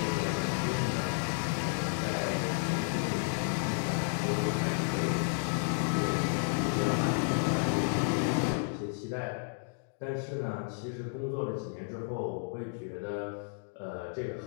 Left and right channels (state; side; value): silent; right; digital silence